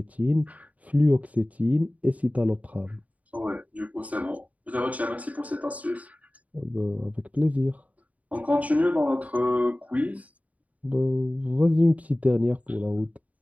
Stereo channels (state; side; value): late; left; 0.071 ms